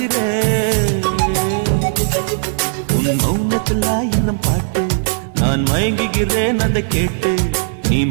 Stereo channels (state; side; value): silent; left; digital silence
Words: உன் மௌனத்தில் ஆயிரம் பாட்டு நான் மயங்குகிறேன் அதை கேட்டு. நீ